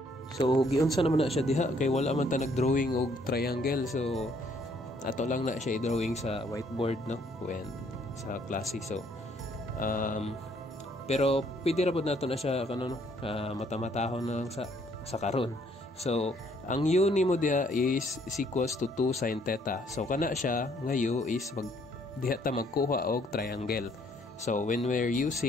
So giunsa naman na siya diha, kay wala man ta nagdrawing og triangle, so ato lang na siya i-drawing sa whiteboard when sa klase. So pero pwede ra pud nato na siya mata-matahon na lang sa karon. So ang u nimo diha is equals to 2 sin theta. So kana siya nga u is diha ta magkuha og triangle. So when we're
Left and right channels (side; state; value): both; normal; correlation 0.65